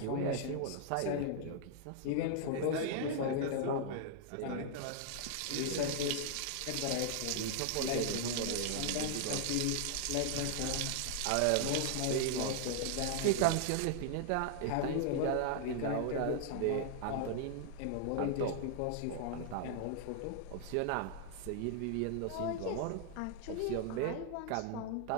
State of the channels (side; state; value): both; different; correlation 0.00